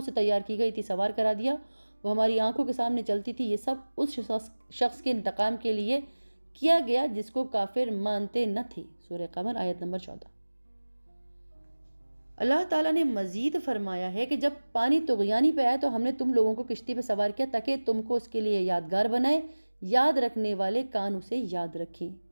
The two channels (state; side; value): inverted; both; correlation -1.00